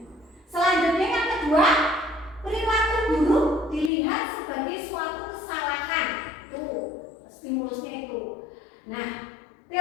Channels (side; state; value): right; drops out; at 3.9 s